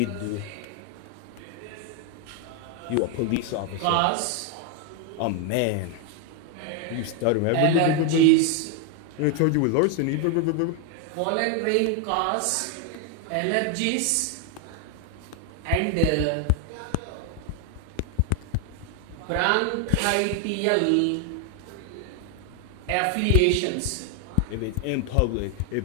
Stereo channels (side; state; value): both; different; correlation 0.01